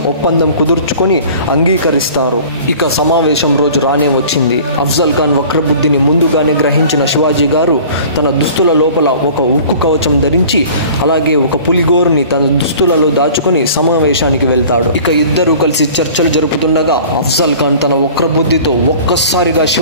ఒప్పందం కుదుర్చుకొని అంగీకరిస్తారు. ఇక సమావేశం రోజు రానే వచ్చింది. అఫ్జల్ ఖాన్ వక్రబుద్ధిని ముందుగానే గ్రహించిన శివాజీ గారు తన దుస్తుల లోపల ఒక ఉక్కు కవచం ధరించి అలాగే ఒక పులిగోరుని తన దుస్తులలో దాచుకొని సమావేశానికి వెళ్తాడు. ఇక ఇద్దరూ కలిసి చర్చలు జరుపుతుండగా అఫ్జల్ ఖాన్ తన వక్రబుద్ధితో ఒక్కసారిగా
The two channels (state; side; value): inverted; both; correlation -0.45